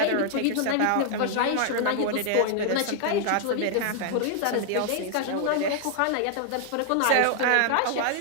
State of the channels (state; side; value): different; both; correlation 0.00